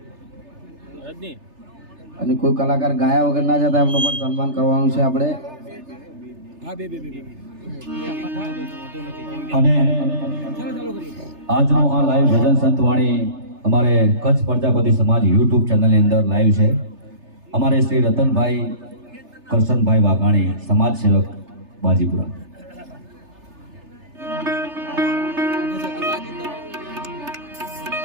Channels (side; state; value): left; late; 3.3 ms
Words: અને કોઈ કલાકાર ગાયા વગર ના જતા એમનું પણ સન્માન કરવાનું છે આપણે. અને આજનો આ લાઈવ ભજન સંતવાણી અમારે કચ્છ પ્રજાપતિ સમાજ યુટ્યુબ ચેનલની અંદર લાઈવ છે. અમારે શ્રી રતનભાઈ કરશનભાઈ વાઘાણી, સમાજ સેવક બાજીપુરા.